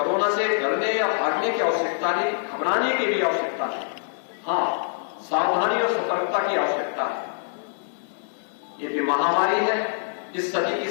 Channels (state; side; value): silent; right; digital silence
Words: से डरने या भागने की आवश्यकता नहीं, घबराने की भी आवश्यकता नहीं। हाँ, सावधानी और सतर्कता की आवश्यकता है। ये भी महामारी है, इस सदी की